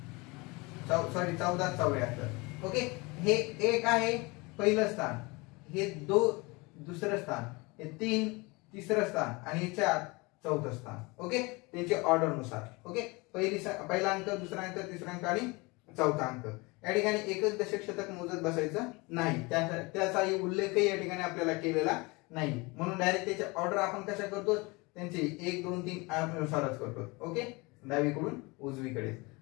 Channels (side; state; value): right; quieter; 25.7 dB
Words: 14, 74. ओके, हे 1 आहे पहिलं स्थान, हे 2 दुसरं स्थान, हे 3 तिसरं स्थान आणि हे 4 चौथं स्थान. ओके, त्यांचे ऑर्डर नुसार. ओके, पहिला अंक, दुसरा अंक, तिसरा अंक आणि चौथा अंक. या ठिकाणी एकच दशक शतक मोजत बसायचं नाही, त्याचाही उल्लेखही या ठिकाणी आपल्याला केलेला नाही. म्हणून डायरेक्ट त्याचे ऑर्डर आपण कशा करतो, त्यांचे 1 2 3 नुसारच करतो. ओके, डावीकडून उजवीकडे